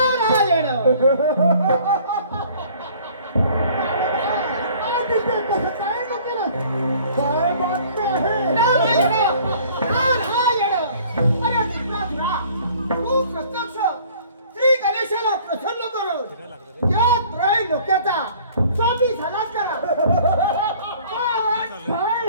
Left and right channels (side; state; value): both; inverted; correlation -0.53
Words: काय बातमी आहे? नारायण नारायण. अरे त्रिपुरासुरा, तू प्रत्यक्ष श्री गणेशाला प्रसन्न करून या त्रय लोकांचा स्वामी झालाच करा. काय